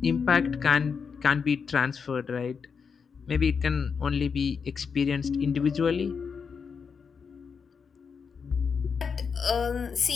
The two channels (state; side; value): quieter; right; 5.9 dB